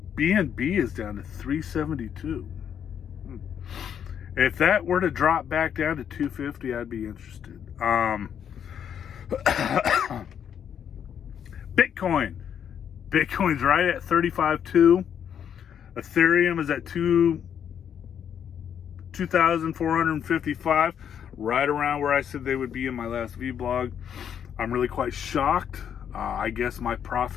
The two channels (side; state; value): right; quieter; 8.6 dB